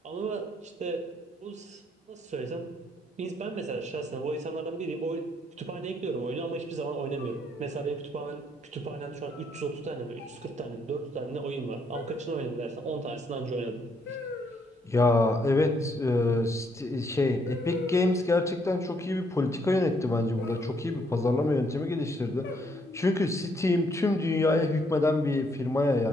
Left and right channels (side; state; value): both; normal; correlation 0.71